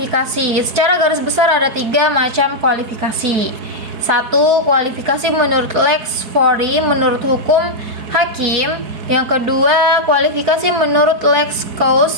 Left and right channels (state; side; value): late; left; 4.2 ms